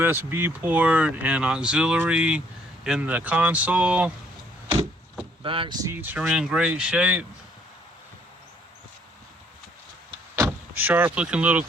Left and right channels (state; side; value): normal; both; correlation 0.64